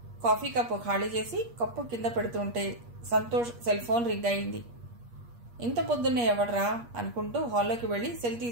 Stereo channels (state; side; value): late; left; 8.4 ms